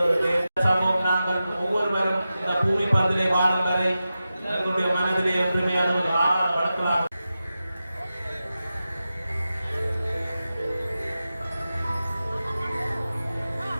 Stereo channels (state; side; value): inverted; both; correlation -0.93